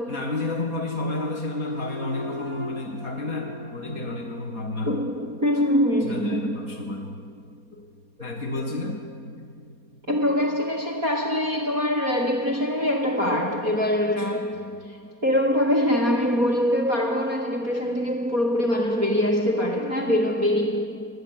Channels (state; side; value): late; left; 4.2 ms